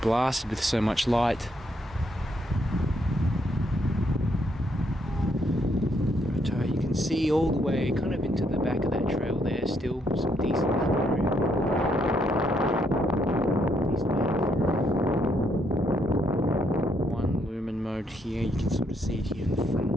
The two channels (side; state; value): both; normal; correlation 0.74